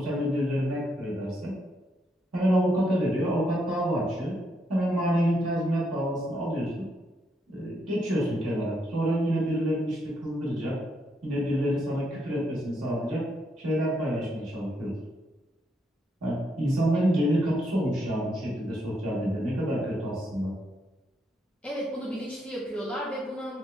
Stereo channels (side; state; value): both; normal; correlation 0.77